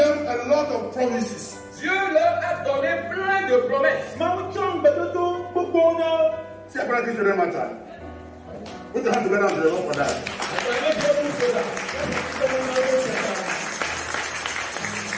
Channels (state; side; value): identical; both; correlation 1.00